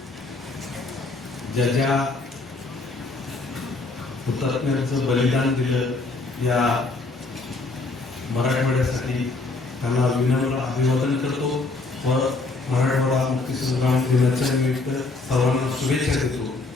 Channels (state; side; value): quieter; right; 3.5 dB